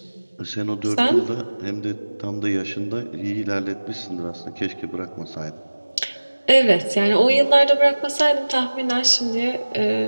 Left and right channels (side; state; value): both; inverted; correlation -1.00